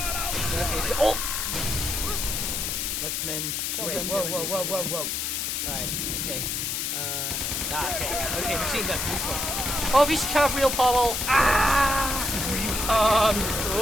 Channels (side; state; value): left; noise; hiss, 1 dB below the sound